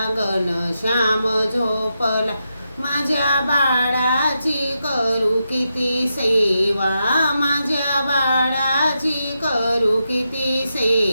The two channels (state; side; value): inverted; both; correlation -0.86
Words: घनश्याम झोपला, माझ्या बाळाची करू किती सेवा, माझ्या बाळाची करू किती